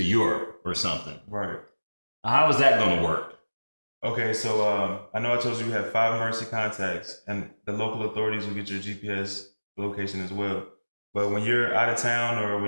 Europe or something, how is that going to work? Okay, so I know I told you we have 5 emergency contacts, and the local authorities will get your GPS location as well. But when you're out of town or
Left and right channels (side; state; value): both; inverted; correlation -1.00